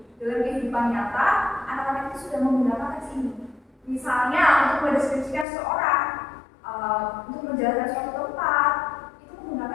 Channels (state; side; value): drops out; right; at 5.5 s